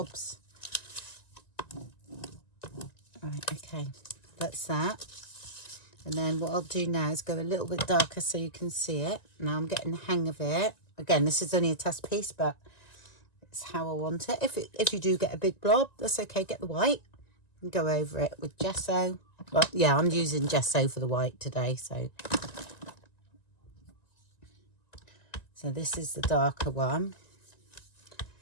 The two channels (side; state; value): right; late; 1.9 ms